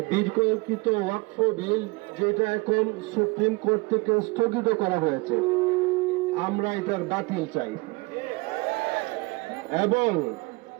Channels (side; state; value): left; quieter; 26.2 dB